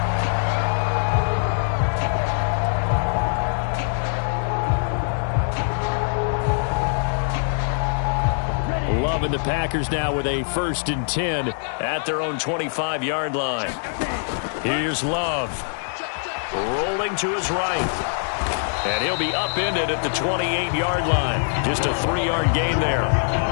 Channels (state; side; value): silent; right; digital silence